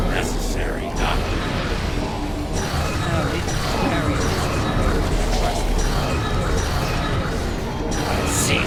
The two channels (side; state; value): both; identical; correlation 1.00